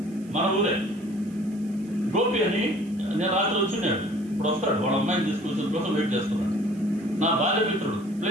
మన ఊరే. గోపి అని నేను రాత్రి వచ్చినాడు, ఇప్పుడు వస్తాడు, వాళ్ళ అమ్మాయిని తీసుకొచ్చిన కోసం వెయిట్ చేస్తున్నాడు. నా బాల్య మిత్రుడు, ప్లే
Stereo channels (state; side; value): noise; right; hiss, 27 dB below the sound